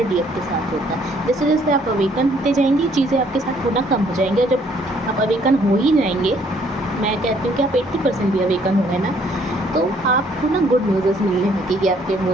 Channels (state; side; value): normal; both; correlation 0.64